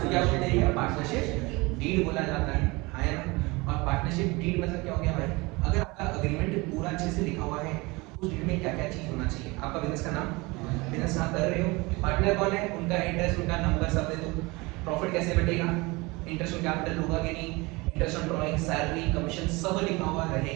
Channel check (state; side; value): quieter; left; 24.2 dB